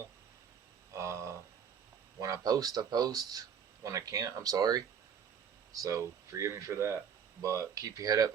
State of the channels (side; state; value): left; quieter; 7.6 dB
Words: Uh, when I post, I post. When I can't, I'm sorry. So forgive me for that. But keep your head